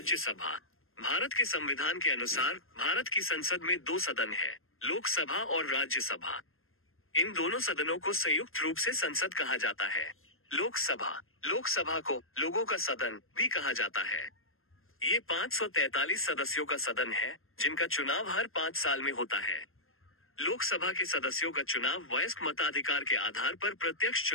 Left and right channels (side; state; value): right; late; 0.61 ms